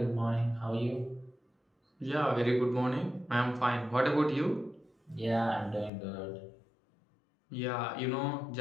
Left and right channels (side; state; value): right; drops out; at 5.9 s